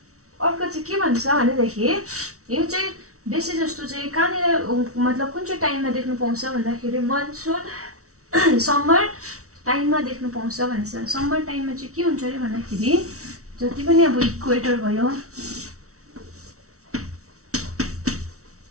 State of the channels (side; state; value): left; late; 0.64 ms